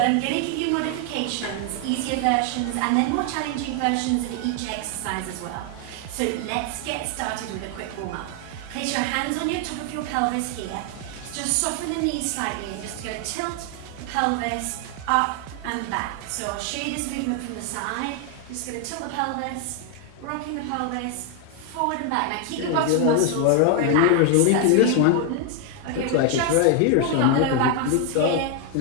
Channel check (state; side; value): different; both; correlation 0.00